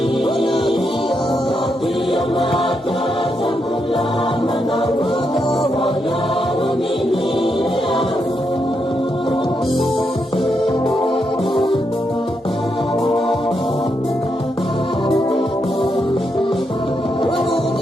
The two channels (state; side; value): normal; both; correlation 0.82